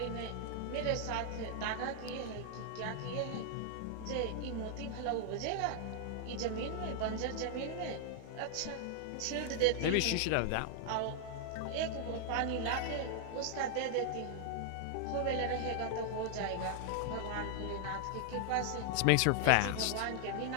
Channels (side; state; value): both; different; correlation 0.00